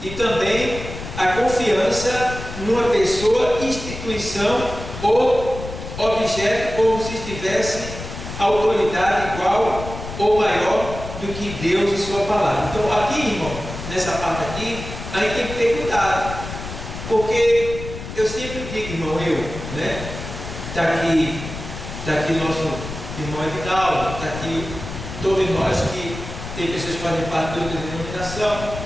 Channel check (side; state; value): left; noise; rumble, 9 dB below the sound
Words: e também a confiança numa pessoa, instituição ou objeto, como se tivesse autoridade igual ou maior do que Deus e sua palavra. Então aqui, irmão, nessa parte aqui, a gente tem que ter cuidado, porque eu sempre digo, irmão, né? Está aqui nosso irmão Edinaldo, está aqui todos nós que tem pessoas que fazem parte de outra denominação.